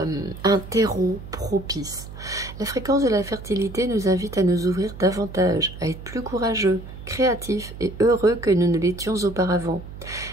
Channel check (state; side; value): noise; right; hum, 13 dB below the sound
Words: terreau propice. La fréquence de la fertilité nous invite à nous ouvrir davantage, à être plus courageux, créatifs et heureux que nous ne l'étions auparavant.